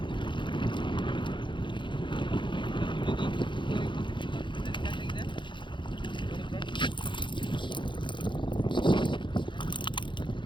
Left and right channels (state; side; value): late; right; 0.23 ms